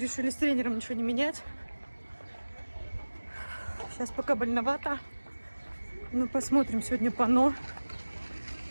с тренером ничего не менять. Сейчас пока больновато. Ну, посмотрим сегодня пано.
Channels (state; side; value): inverted; both; correlation -1.00